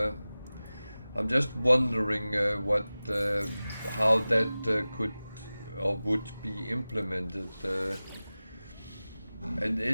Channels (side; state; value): both; inverted; correlation -0.97